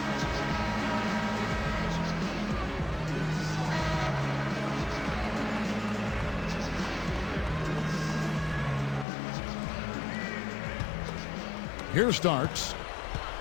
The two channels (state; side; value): drops out; right; at 9.1 s